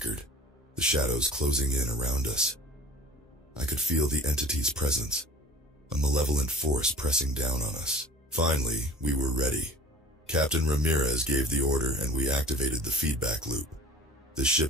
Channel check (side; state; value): both; normal; correlation 0.43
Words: the shadows closing in around us. I could feel the entity's presence, a malevolent force pressing down on us. Finally, we were ready. Captain Ramirez gave the order, and we activated the feedback loop. The